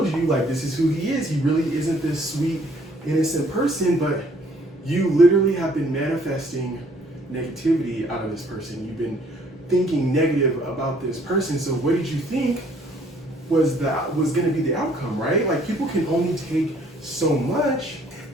you, like, this is who he is. He really isn't this sweet, innocent person, but you literally have been manifesting negativity out of this person. You've been thinking negative about this person. So what did you think was going to be the outcome, right? Like, people can only take so much.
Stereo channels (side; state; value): both; normal; correlation 0.61